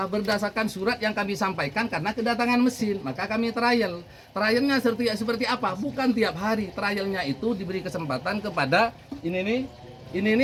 Berdasarkan surat yang kami sampaikan karena kedatangan mesin. Maka kami trial. Trialnya seperti apa? Bukan tiap hari. Trialnya itu diberi kesempatan kepada ini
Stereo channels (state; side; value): identical; both; correlation 1.00